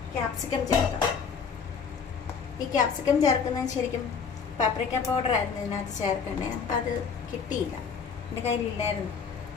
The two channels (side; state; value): right; quieter; 6.0 dB